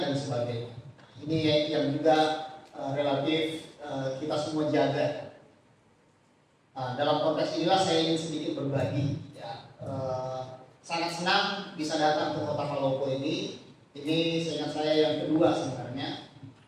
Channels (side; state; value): both; identical; correlation 1.00